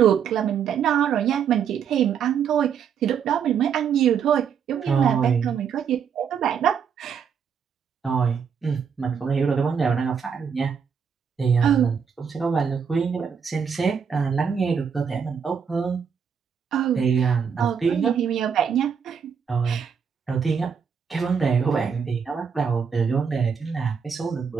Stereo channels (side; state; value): left; quieter; 6.9 dB